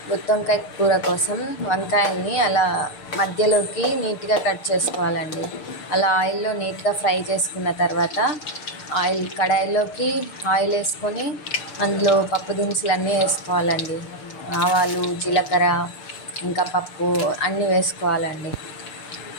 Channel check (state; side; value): late; right; 6.7 ms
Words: గుత్తొంకాయ కూర కోసం వంకాయల్ని అలా మధ్యలోకి నీట్గా కట్ చేసుకోవాలండి. అలా ఆయిల్లో నీట్గా ఫ్రై చేసుకున్న తర్వాత కడాయిలోకి ఆయిల్ వేసుకొని అందులో పప్పు దినుసులు వేసుకోవాలండి. ఆవాలు, జీలకర్ర, ఇంకా పప్పు అన్నీ వేసుకోవాలండి.